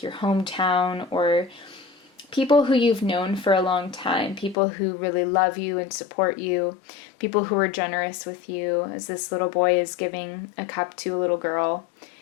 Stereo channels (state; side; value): drops out; right; at 4.5 s